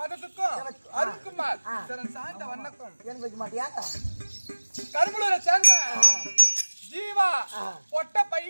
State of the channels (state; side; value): inverted; both; correlation -1.00